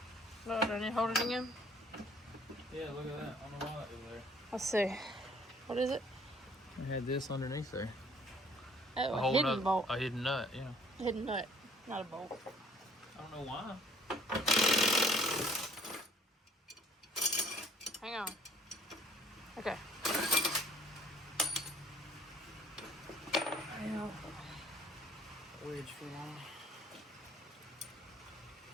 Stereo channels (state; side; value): normal; both; correlation 0.57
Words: No, don't you hold it again? Yeah, look at that. I don't know why that was there. Let's see. What is it? I had this underneath there. Oh, a hidden bolt. A hidden nut, yeah. Hidden nut, not a bolt. I don't know why. Hang on. Okay. Ow. Wedge for long.